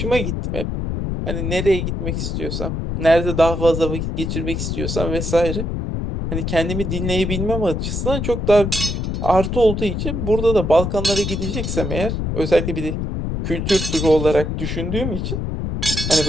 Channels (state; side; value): noise; left; rumble, 2 dB below the sound